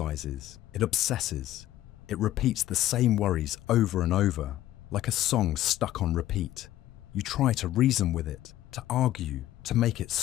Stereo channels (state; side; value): quieter; right; 14.0 dB